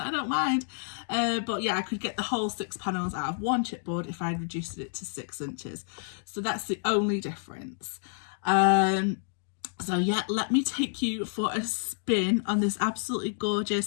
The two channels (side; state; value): right; silent; digital silence